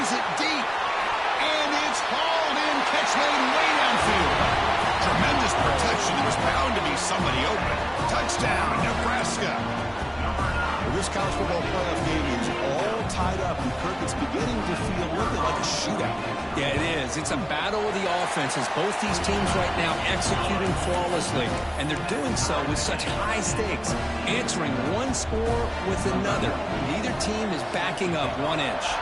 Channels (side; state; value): both; identical; correlation 1.00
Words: it deep. And it's hauled in. Catch made way downfield. Tremendous protection. There was bound to be somebody open. Touchdown, Nebraska. Well, this college football playoff game is all tied up, and Kirk, it's beginning to feel a little bit like a shootout. Yeah, it is. It's a battle of the offenses. Both these teams right now executing flawlessly, and they're doing so with such high stakes, answering one score with another. Neither team is backing up 1 inch.